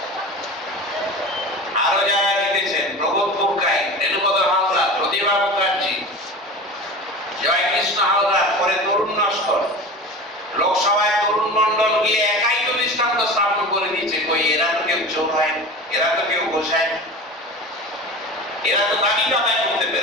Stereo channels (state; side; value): normal; both; correlation 0.33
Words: আরো যারা জিতেছেন, প্রবোধ মুখার্জি, রেণুপদ হালদার, প্রতিভা মুখার্জি, জয়কৃষ্ণ হালদার, পরে তরুণ নস্কর, লোকসভায় তরুণ মন্ডল গিয়ে একাই তো দৃষ্টান্ত স্থাপন করে দিয়েছে। কই এরা তো কেউ চোর হয়, এরা তো কেউ গোসায়, এরা তো দাবি আদায় করতে